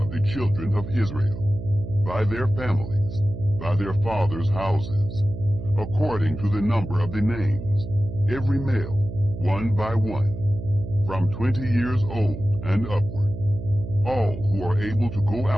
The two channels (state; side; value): noise; right; hum, 9 dB below the sound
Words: the children of Israel, by their families, by their fathers' houses, according to the number of the names, every male, one by one, from 20 years old and upward, all who are able to go